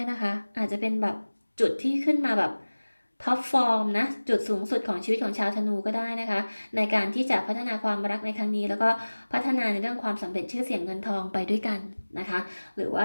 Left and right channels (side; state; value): both; inverted; correlation -1.00